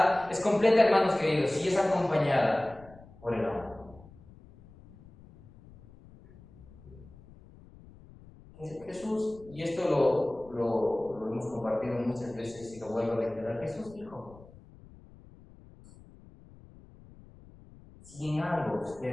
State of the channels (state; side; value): noise; left; rumble, 22 dB below the sound